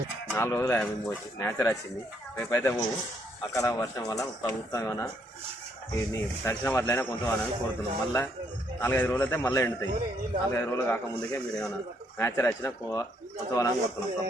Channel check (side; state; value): both; normal; correlation 0.71